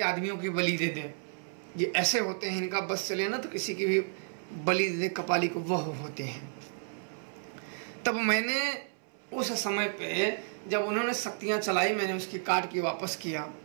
आदमियों की बलि दे दे, ये ऐसे होते हैं। इनका बस चले ना तो किसी की भी बलि दे दे, कपालिक वह होते हैं। तब मैंने उस समय पे जब उन्होंने शक्तियां चलाई, मैंने उसकी काट के वापस किया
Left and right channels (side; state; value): left; silent; 57 dB below the other